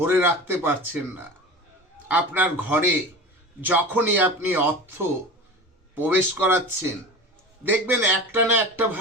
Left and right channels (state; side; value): normal; both; correlation 0.33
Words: রাখতে পারছেন না। আপনার ঘরে যখনই আপনি অর্থ প্রবেশ করাচ্ছেন, দেখবেন একটা না একটা